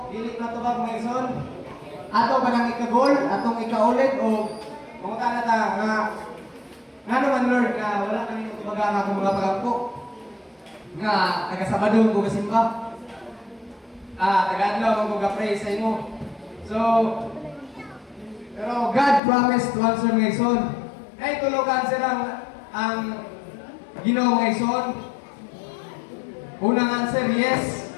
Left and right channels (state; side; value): drops out; right; at 19.2 s